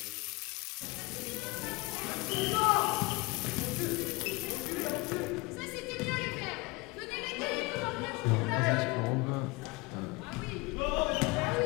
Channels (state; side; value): quieter; right; 24.7 dB